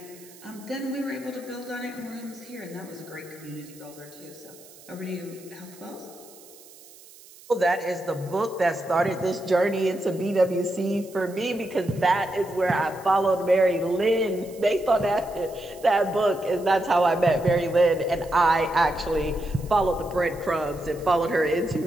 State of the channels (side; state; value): right; noise; hiss, 22 dB below the sound